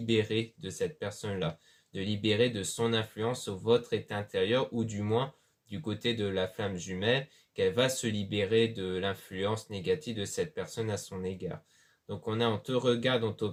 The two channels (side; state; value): both; identical; correlation 1.00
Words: de cette personne-là, de libérer de son influence sur votre état intérieur, ou du moins du côté de la flamme jumelle, qu'elle va se libérer de l'influence négative de cette personne à son égard. Donc on te regarde, on